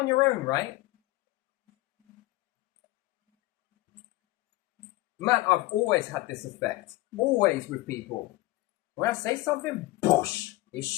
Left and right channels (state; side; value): quieter; right; 19.5 dB